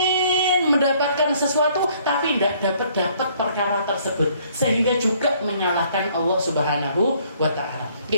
mendapatkan sesuatu tapi tidak dapat perkara tersebut sehingga juga menyalahkan Allah Subhanahu wa Ta'ala.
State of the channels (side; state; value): both; inverted; correlation -0.62